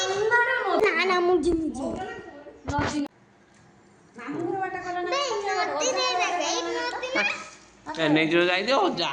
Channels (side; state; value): both; identical; correlation 1.00